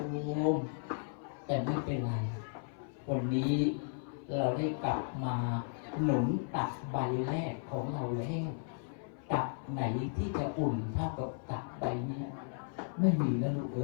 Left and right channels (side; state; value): right; silent; 54 dB below the other